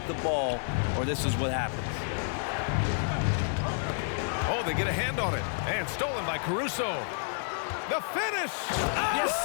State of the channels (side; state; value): right; silent; digital silence